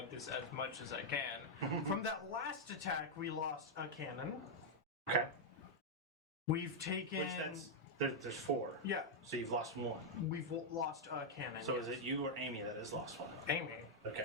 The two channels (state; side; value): normal; both; correlation -0.03